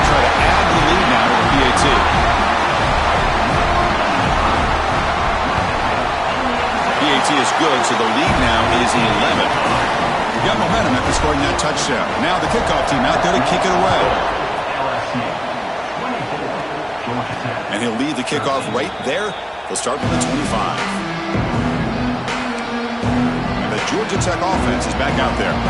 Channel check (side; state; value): both; identical; correlation 1.00